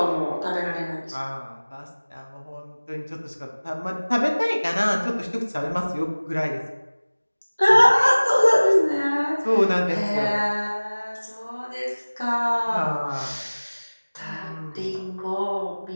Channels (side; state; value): both; inverted; correlation -1.00